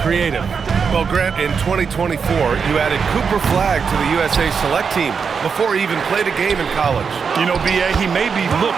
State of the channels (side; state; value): left; quieter; 5.9 dB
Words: creative. Well, Grant, in 2024, you added Cooper Flagg to the USA Select team before he even played a game in college. You know, B.A., he made me look